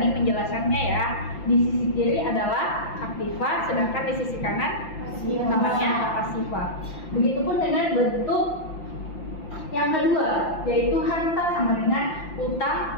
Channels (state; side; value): late; right; 5.8 ms